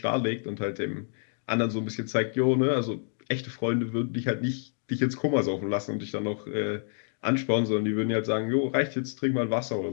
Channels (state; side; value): silent; right; digital silence